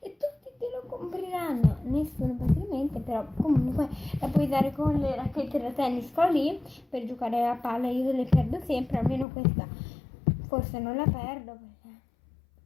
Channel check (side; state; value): right; drops out; at 9.2 s